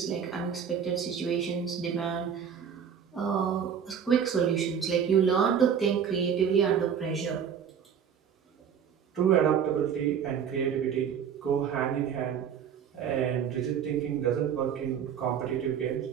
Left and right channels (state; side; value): quieter; left; 7.8 dB